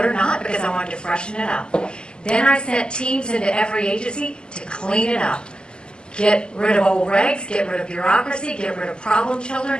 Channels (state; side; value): late; right; 0.048 ms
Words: or not, because I wanted to freshen it up. Then I sent teams into every agency to clean it up. Get rid of old regs, get rid of bureaucracy, get rid of problem children,